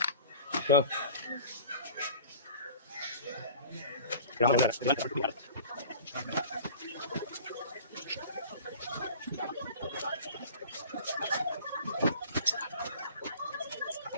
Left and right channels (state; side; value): inverted; both; correlation -0.42